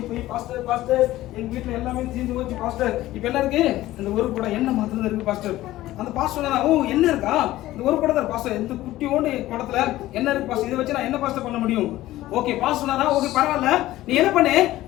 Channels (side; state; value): right; quieter; 15.8 dB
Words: போய் பாஸ்டர் எங்க வீட்டுல எல்லாமே தீர்ந்து போச்சு பாஸ்டர், இப்ப என்ன இருக்கு, இந்த ஒரு கூட எண்ணெய் மாத்திரம் இருக்கு பாஸ்டர். அந்த பாஸ்டர் சொன்னா, ஓ என்ன இருக்கா, இந்த ஒரு குடம் தான் பாஸ்டர், இந்த குட்டியோண்டு குடத்துல என்ன இருக்கு பாஸ்டர், இதை வச்சு நான் என்ன பாஸ்டர் பண்ண முடியும். ஓகே பாஸ்டர் சொன்னாரா, ஓகே பரவாயில்ல, நீ என்ன பண்ணு